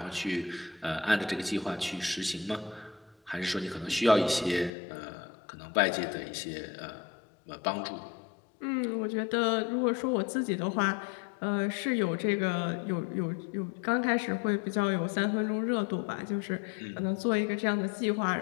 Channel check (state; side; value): drops out; right; at 4.7 s